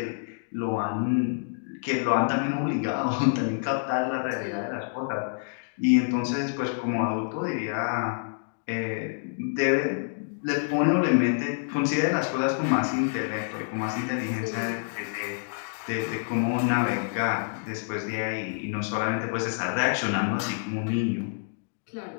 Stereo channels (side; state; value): right; silent; digital silence